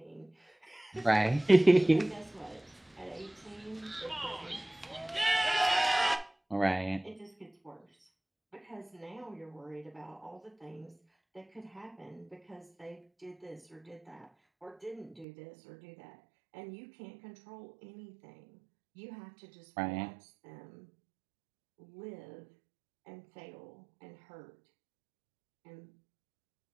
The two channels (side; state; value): left; drops out; at 15.2 s